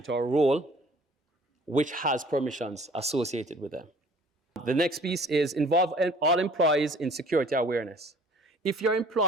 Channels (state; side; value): normal; both; correlation 0.52